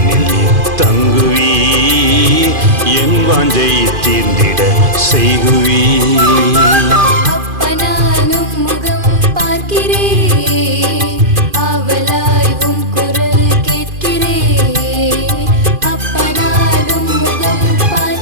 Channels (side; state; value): left; late; 2.5 ms